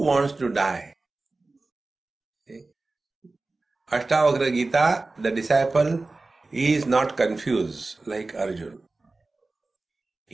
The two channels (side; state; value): left; quieter; 3.4 dB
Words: to die? See? Ashtavakra Gita, the disciple is not confused like Arjuna.